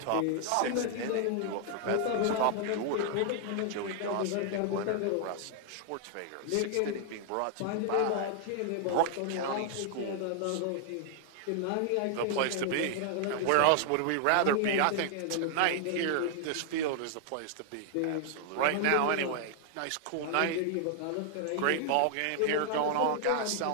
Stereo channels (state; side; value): different; both; correlation 0.00